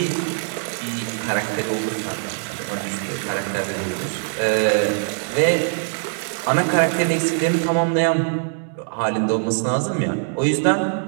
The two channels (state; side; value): silent; left; digital silence